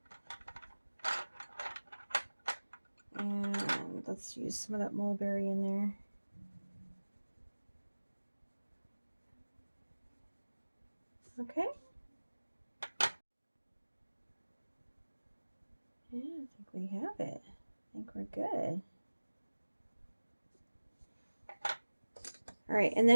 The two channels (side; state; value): both; inverted; correlation -1.00